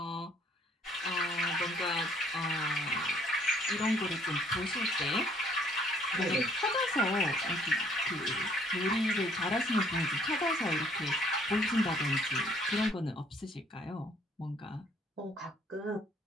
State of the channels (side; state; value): both; normal; correlation 0.61